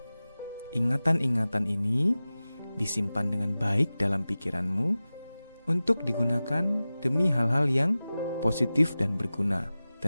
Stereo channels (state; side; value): inverted; both; correlation -0.96